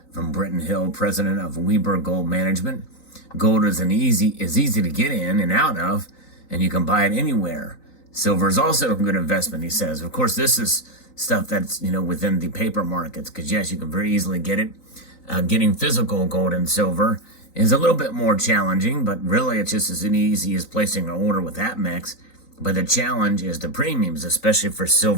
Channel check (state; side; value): late; right; 3.9 ms